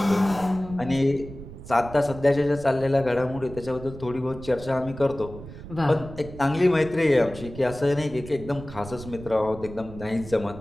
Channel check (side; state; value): right; noise; rumble, 14 dB below the sound